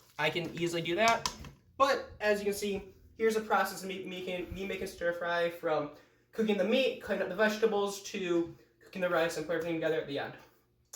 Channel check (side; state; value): both; identical; correlation 1.00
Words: I can easily do that. But as you can see, here's a process of me making stir fry, from cooking the meat, cutting up the vegetables, to cooking the rice and putting everything together at the end.